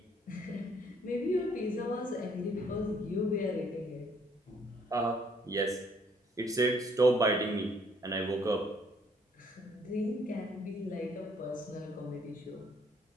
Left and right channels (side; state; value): both; normal; correlation 0.64